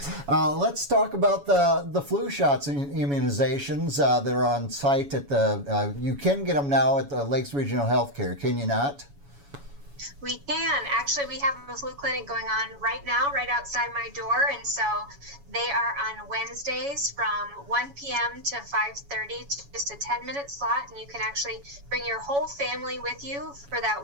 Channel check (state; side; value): late; left; 7.1 ms